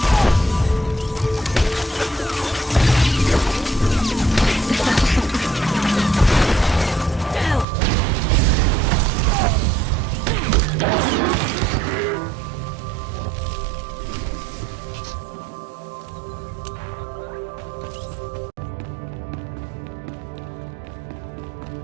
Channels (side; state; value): left; drops out; at 7.7 s